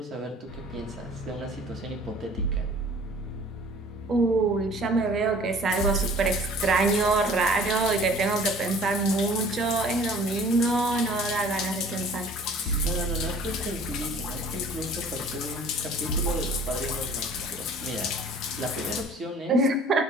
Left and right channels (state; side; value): normal; both; correlation 0.50